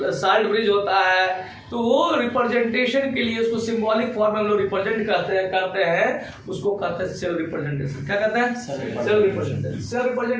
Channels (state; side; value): identical; both; correlation 1.00